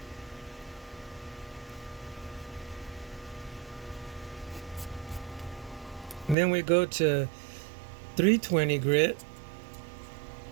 And then we go to 320 grit,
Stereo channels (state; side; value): drops out; left; at 6.4 s